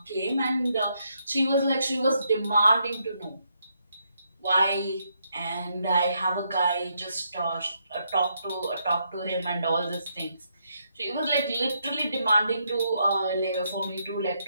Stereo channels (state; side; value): inverted; both; correlation -0.77